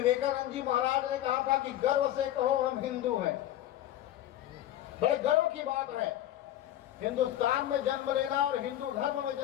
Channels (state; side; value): quieter; right; 13.0 dB